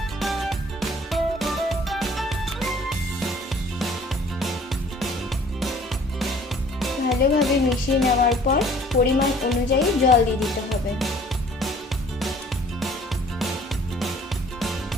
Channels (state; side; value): normal; both; correlation 0.54